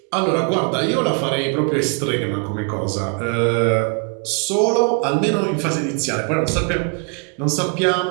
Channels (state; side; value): quieter; left; 38.6 dB